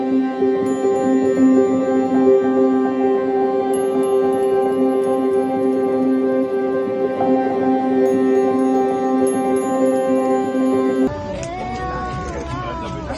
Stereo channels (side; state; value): both; identical; correlation 1.00